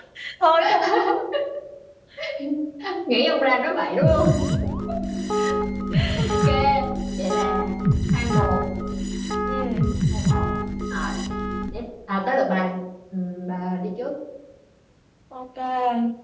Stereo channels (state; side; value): identical; both; correlation 1.00